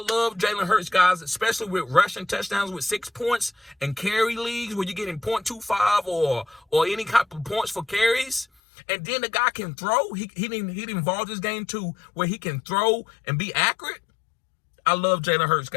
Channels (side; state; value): right; drops out; at 8.5 s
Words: Jalen Hurts, guys, especially with rushing touchdowns with 6 points and carry leagues where you're getting 0.25 or any type of points for carries. And then the guy can throw. He involved his game too where he can throw and be accurate. I love Jalen Hurts,